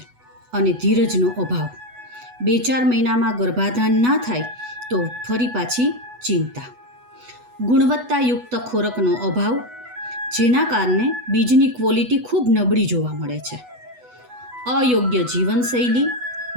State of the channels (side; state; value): left; late; 8.1 ms